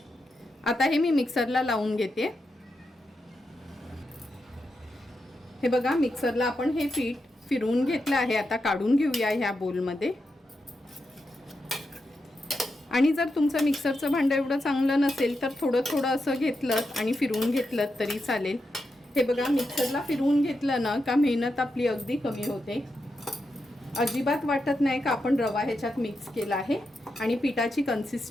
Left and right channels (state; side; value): normal; both; correlation 0.86